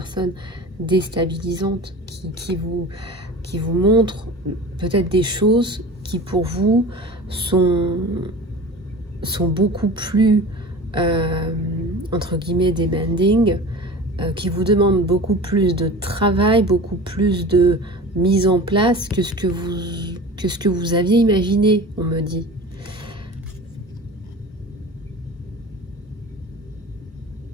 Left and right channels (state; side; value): normal; both; correlation 0.36